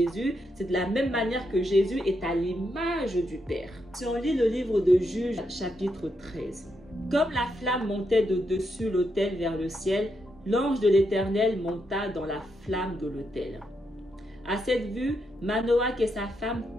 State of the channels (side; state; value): both; normal; correlation 0.81